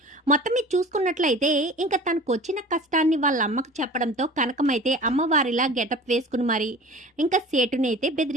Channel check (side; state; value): both; normal; correlation 0.40